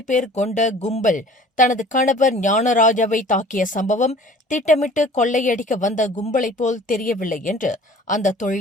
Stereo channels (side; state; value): both; normal; correlation 0.48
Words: பேர் கொண்ட கும்பல் தனது கணவர் ஞானராஜாவை தாக்கிய சம்பவம் திட்டமிட்டு கொள்ளையடிக்க வந்த கும்பலைப் போல் தெரியவில்லை என்று அந்த